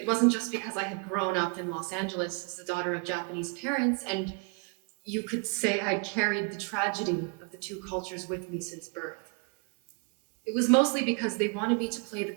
wasn't just because I had grown up in Los Angeles as the daughter of Japanese parents, and you could say I'd carried the tragedy of the two cultures with me since birth. It was mostly because they wanted me to play the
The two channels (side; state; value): left; quieter; 33.8 dB